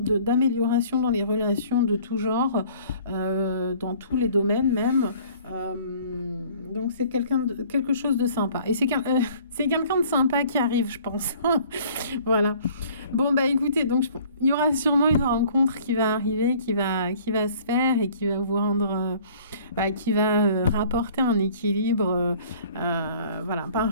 dans les relations de tout genre, dans tous les domaines même. Donc, c'est quelque chose de sympa. Et c'est quelqu'un de sympa qui arrive, je pense. Voilà. Bon, écoutez, donc il y aura sûrement une rencontre qui va arriver, qui va se faire et qui va vous rendre, qui va rapporter un équilibre. Voilà.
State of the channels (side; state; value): both; inverted; correlation -0.53